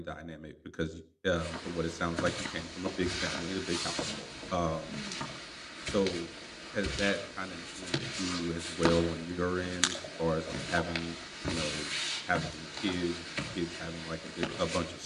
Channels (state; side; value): identical; both; correlation 1.00